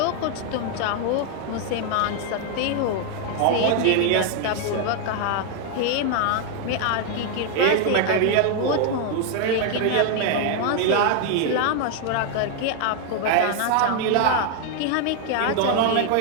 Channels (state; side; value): different; both; correlation 0.00